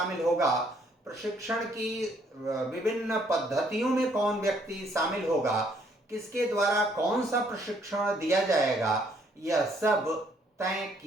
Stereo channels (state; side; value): normal; both; correlation 0.67